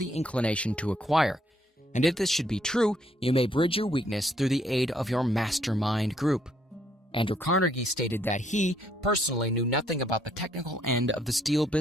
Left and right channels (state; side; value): normal; both; correlation 0.69